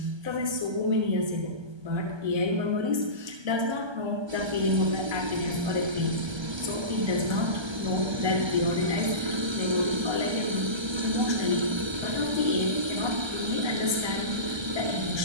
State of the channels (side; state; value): left; late; 1.3 ms